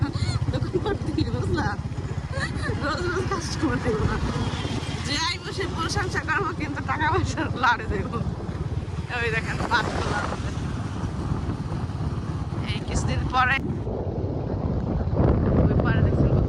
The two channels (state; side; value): identical; both; correlation 1.00